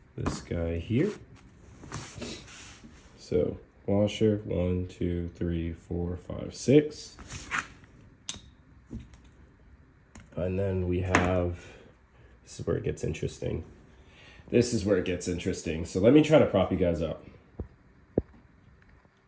This guy here. So washer, 1, 2, 3, 4, 5, 6. And then we have, this is where it gets interesting. This is where it gets interesting. So let me try to prop you guys up.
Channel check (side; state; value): both; identical; correlation 1.00